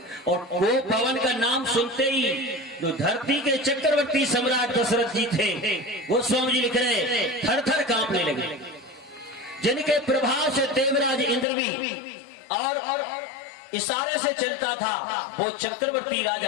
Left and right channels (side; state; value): right; drops out; at 11.5 s